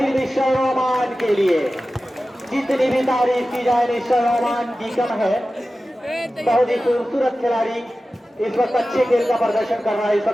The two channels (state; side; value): normal; both; correlation 0.95